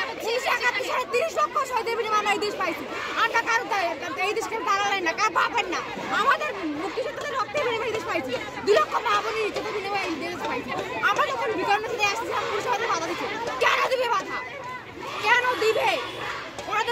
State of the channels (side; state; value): both; identical; correlation 1.00